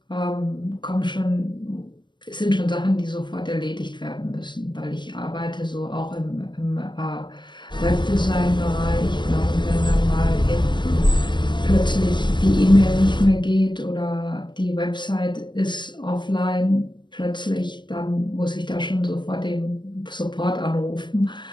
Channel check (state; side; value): late; right; 0.22 ms